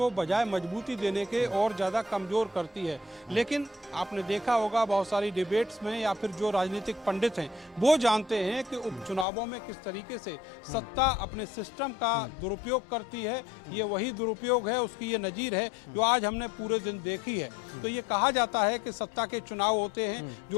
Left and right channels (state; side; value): drops out; right; at 9.2 s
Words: बजाय मजबूती देने के और ज़्यादा कमज़ोर करती है। लेकिन आपने देखा होगा बहुत सारी डिबेट्स में या फिर जो राजनीतिक पंडित हैं वो जानते हैं कि उपचुनावों में किस तरीके से सत्ता अपने सिस्टम का दुरुपयोग करती है। ये वही दुरुपयोग है, उसकी ये नज़ीर है जो आज हमने पूरे दिन देखी है। तो ये कहा जाता है कि सत्ता के चुनाव होते हैं,